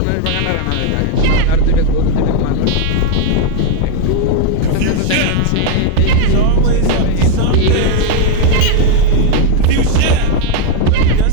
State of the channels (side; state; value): both; different; correlation 0.00